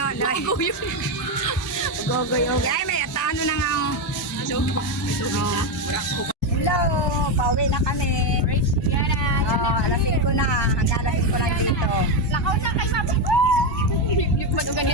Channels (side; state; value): both; normal; correlation 0.08